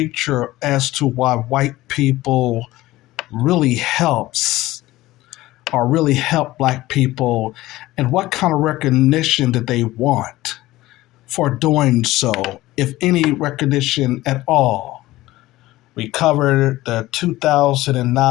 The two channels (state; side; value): quieter; right; 17.3 dB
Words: as to why white people really helps or really help black people, and what kind of recognition did they want for doing so, if any recognition at all? We covered the